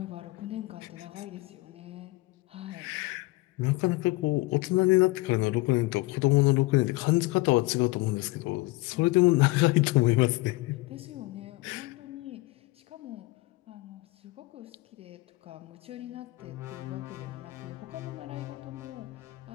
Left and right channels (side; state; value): right; quieter; 21.6 dB